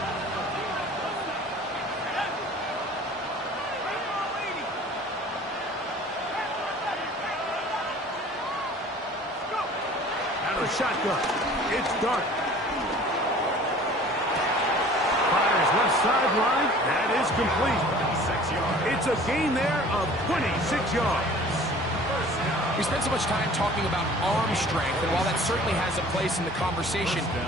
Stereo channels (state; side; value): normal; both; correlation 0.47